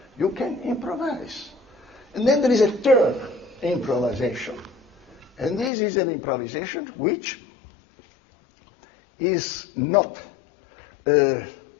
you can improvise. And then there is a third improvisation. And this is an improvisation which is not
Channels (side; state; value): right; drops out; at 5.7 s